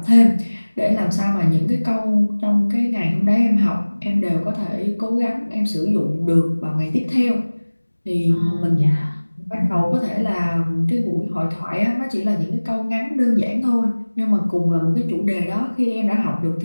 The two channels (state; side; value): inverted; both; correlation -1.00